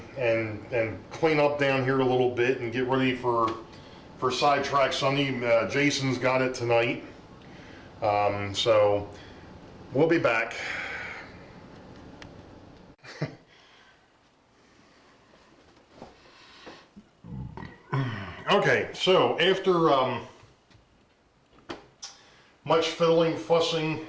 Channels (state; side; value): identical; both; correlation 1.00